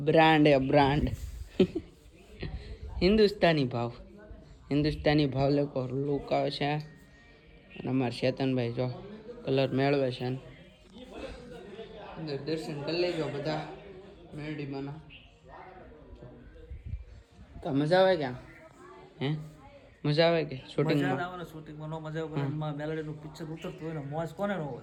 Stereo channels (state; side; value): identical; both; correlation 1.00